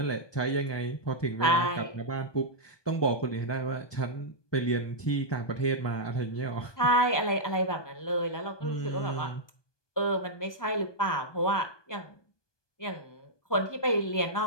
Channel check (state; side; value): late; right; 1.2 ms